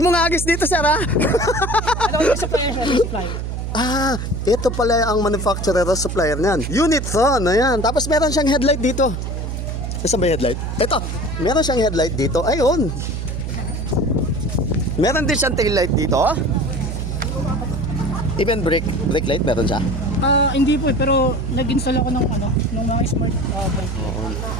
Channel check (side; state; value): right; noise; hum, 4 dB below the sound